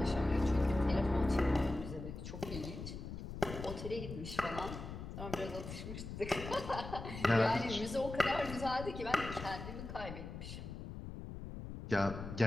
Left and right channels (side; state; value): left; noise; rumble, 9 dB below the sound